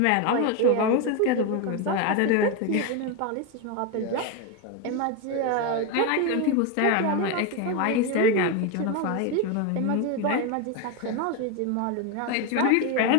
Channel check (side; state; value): both; different; correlation 0.02